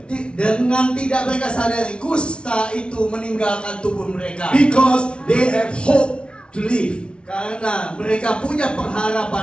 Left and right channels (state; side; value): late; right; 0.058 ms